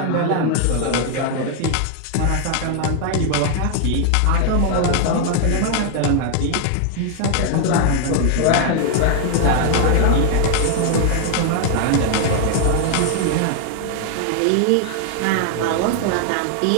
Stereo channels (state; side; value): different; both; correlation 0.00